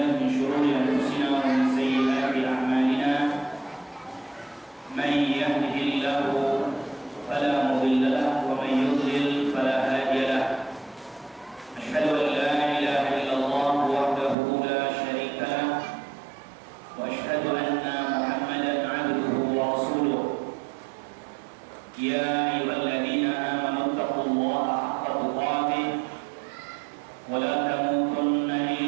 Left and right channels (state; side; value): drops out; left; at 14.4 s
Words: min shururi anfusina wa min sayyiati a'malina may yahdihillahu fala mudilla lahu wa may yudlil fala hadiya lahu asyhadu an la ilaha illallah wahdahu la syarika lahu wa asyhadu anna Muhammadan 'abduhu wa rasuluh ya ayyuhalladzina amanu taqullaha haqqa tuqatih wa la tamutunna